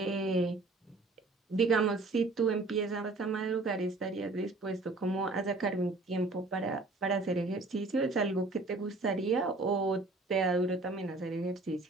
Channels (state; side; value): quieter; left; 3.3 dB